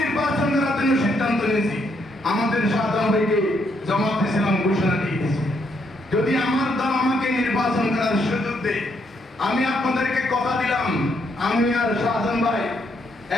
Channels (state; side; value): normal; both; correlation 0.74